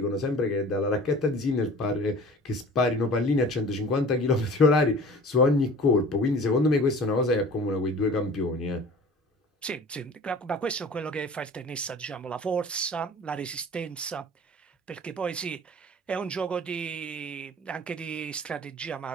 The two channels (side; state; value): both; normal; correlation 0.43